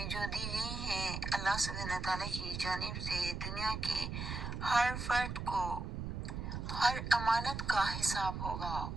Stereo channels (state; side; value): noise; right; rumble, 5 dB below the sound